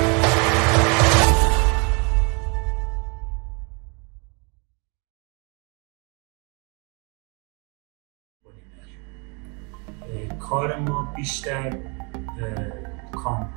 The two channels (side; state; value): left; quieter; 32.6 dB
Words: کار ما بیشتر